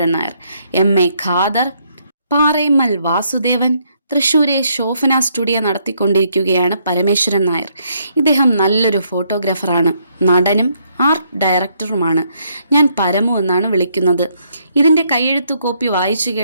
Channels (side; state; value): both; inverted; correlation -0.72